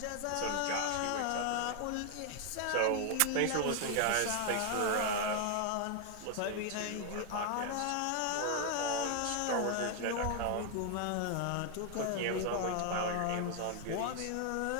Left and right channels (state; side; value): different; both; correlation 0.00